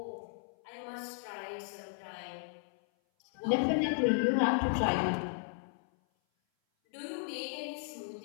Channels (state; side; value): silent; right; 55 dB below the other